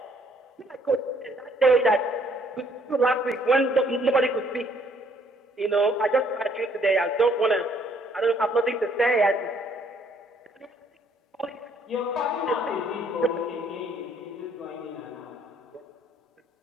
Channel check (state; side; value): normal; both; correlation 0.65